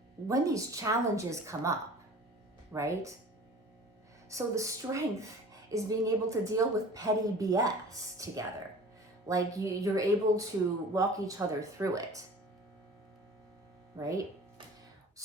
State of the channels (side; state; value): both; normal; correlation 0.43